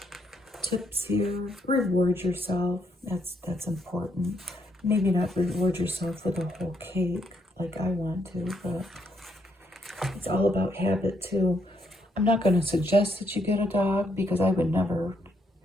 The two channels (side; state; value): both; normal; correlation 0.75